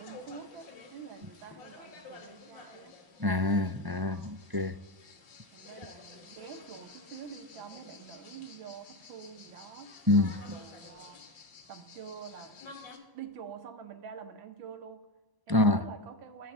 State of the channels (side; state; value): left; late; 1.0 ms